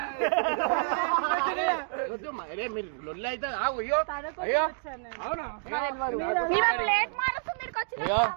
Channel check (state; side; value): silent; left; digital silence